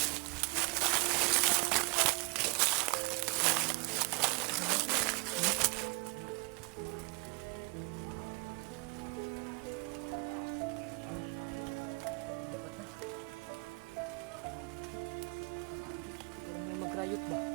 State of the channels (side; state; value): left; quieter; 30.8 dB